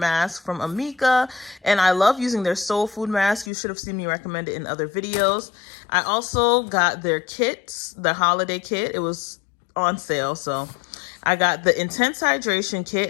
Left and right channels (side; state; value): right; drops out; at 3.5 s